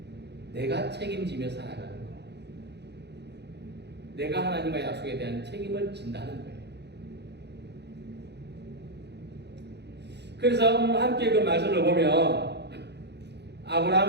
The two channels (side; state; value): left; late; 0.49 ms